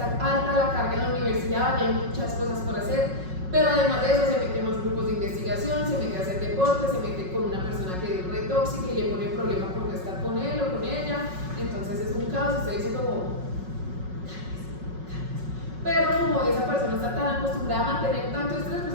alta la carga en la universidad, hay muchas cosas por hacer, pero además de eso se mete en los grupos de investigación, se mete a hacer deporte, se mete con una persona que es re tóxica y le pone problema por no estar con él o con ella, entonces usted dice como, pero como esa persona está tan acostumbrada a mantener tanto estrés,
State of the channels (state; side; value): late; left; 5.4 ms